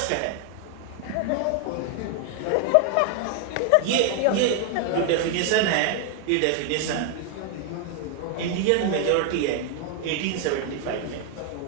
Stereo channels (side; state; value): both; different; correlation 0.00